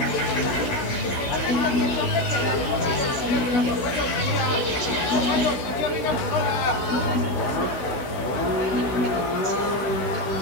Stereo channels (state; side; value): late; right; 16 ms